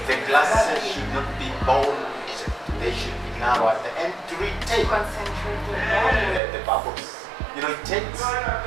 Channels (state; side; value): drops out; left; at 6.4 s